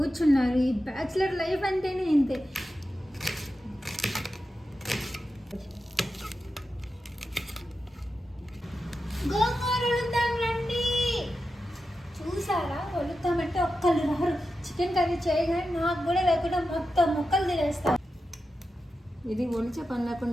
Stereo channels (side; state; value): both; normal; correlation 0.90